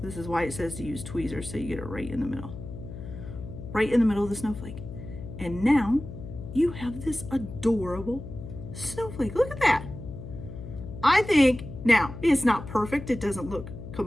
This is why it says to use tweezers, so you get it right in the middle. Right in the middle of the snowflake. And now you have this adorable snowflake. Look at that. I think, now, it's not perfect. It doesn't look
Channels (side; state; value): left; noise; hum, 11 dB below the sound